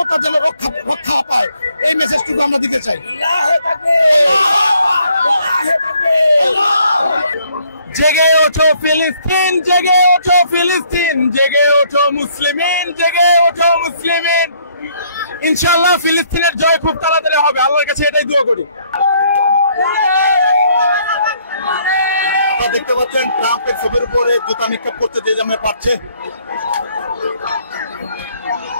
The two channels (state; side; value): inverted; both; correlation -0.66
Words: যেন রক্ষা পায়, এই মেসেজটুকু আমরা দিতে চাই। জেগে ওঠো ফিলিস্তিন, জেগে ওঠো ফিলিস্তিন, জেগে ওঠো মুসলিমিন, জেগে ওঠো মুসলিমিন। ইনশাআল্লাহ ফিলিস্তিনের জয় খুব তাড়াতাড়ি হবে, আল্লাহর কাছে এটাই দোয়া করি। আপনারা দেখতে পাচ্ছেন ট্রাম্পের ছবির উপরে জুতা নিক্ষেপ করতে যে যেমন পারছে।